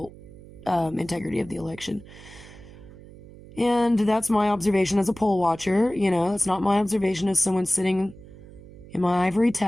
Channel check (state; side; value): noise; right; hum, 19 dB below the sound